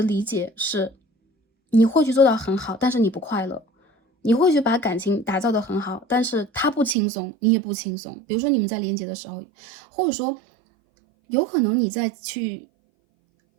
理解是你会去做到很好，但是你不快乐。你会去把感情打造得很好，但是他不轻松，你也不轻松。比如说你们在连接的时候，或者说有可能你在去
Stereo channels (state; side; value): drops out; left; at 7.0 s